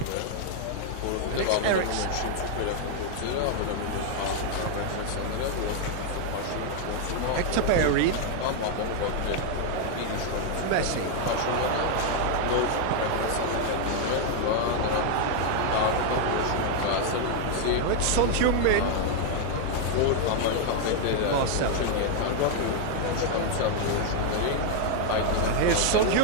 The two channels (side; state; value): both; different; correlation 0.00